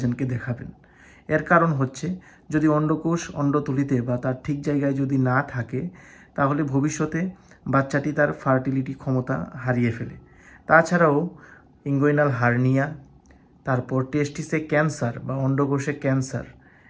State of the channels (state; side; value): identical; both; correlation 1.00